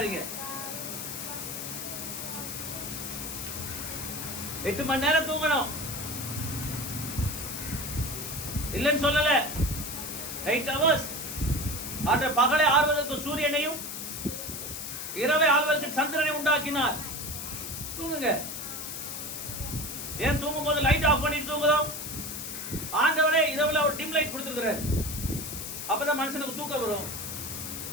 8 மணி நேரம் தூங்கணும் இல்லைன்னு சொல்லல. 8 hours. ஆற்ற பகலை ஆள்வதற்கு சூரியனையும் இரவை ஆள்வதற்கு சந்திரனை உண்டாக்கினார். தூங்குங்க. ஏன் தூங்கும் போது லைட் ஆஃப் பண்ணிட்டு தூங்குறோம்? ஆண்டவரே இரவுல ஒரு டிம் லைட் கொடுத்துருக்கிறார், அப்பதான் மனுஷனுக்கு தூக்கம் வரும்.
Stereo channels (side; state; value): left; noise; hiss, 6 dB below the sound